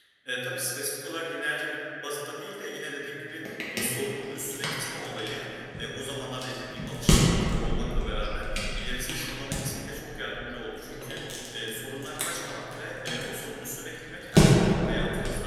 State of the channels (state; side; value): identical; both; correlation 1.00